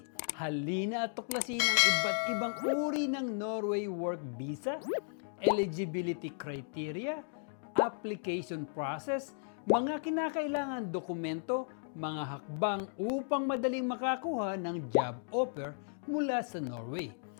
Halina at tuklasin ang iba't ibang uri ng Norway Work Visa, eligibility criteria, application process, mga kinakailangan dokumento, mga hakbang upang madaling makakuha ng job offer mula sa Norway,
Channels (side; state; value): right; silent; digital silence